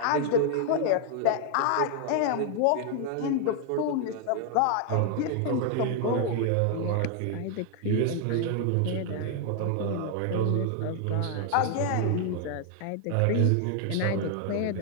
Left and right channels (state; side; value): different; both; correlation 0.00